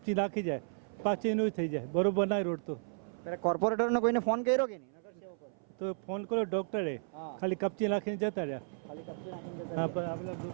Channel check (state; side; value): silent; left; 55 dB below the other